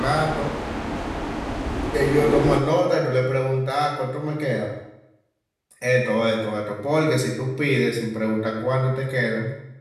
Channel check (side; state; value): both; identical; correlation 1.00